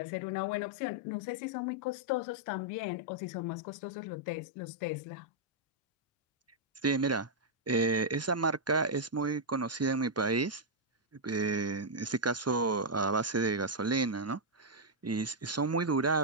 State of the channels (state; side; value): normal; both; correlation -0.05